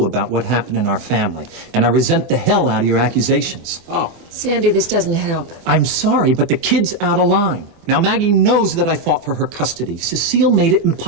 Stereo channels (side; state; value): left; late; 24 ms